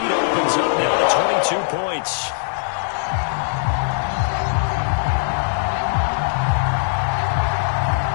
opens up now to 22 points.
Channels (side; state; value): right; silent; digital silence